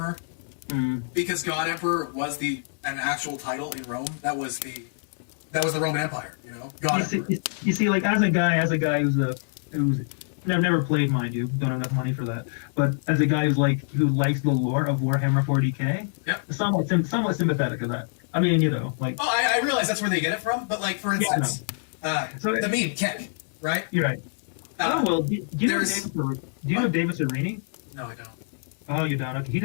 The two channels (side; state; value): right; silent; digital silence